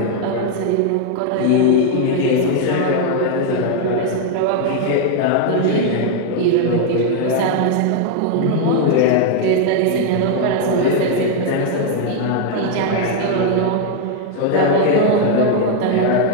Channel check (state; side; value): different; both; correlation 0.00